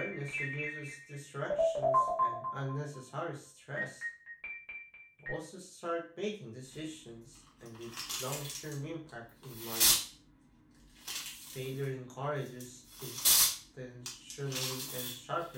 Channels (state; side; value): identical; both; correlation 1.00